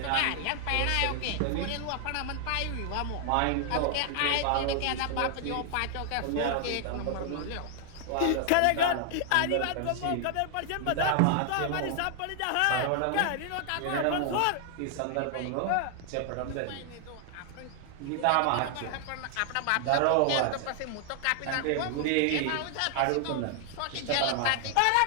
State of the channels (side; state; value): both; different; correlation 0.00